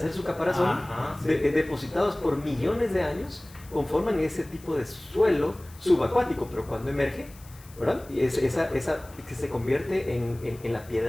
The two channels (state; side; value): noise; left; hiss, 23 dB below the sound